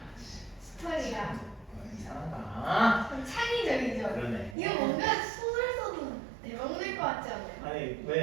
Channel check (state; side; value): drops out; left; at 4.5 s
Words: 스토리가 이상하다. 좀 창의적이죠. 그러네. 이거 뭔가 소설 써도 대박 낼 것 같지 않아요? 아니